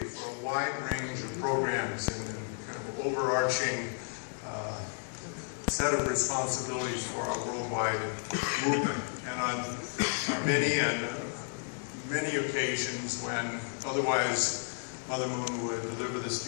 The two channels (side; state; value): right; silent; 56 dB below the other